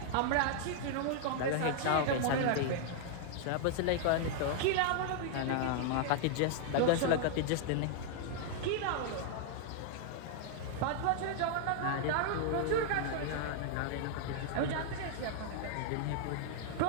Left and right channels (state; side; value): different; both; correlation -0.01